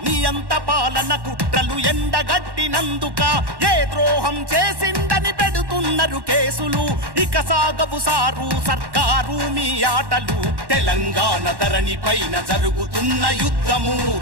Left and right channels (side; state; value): left; late; 1.1 ms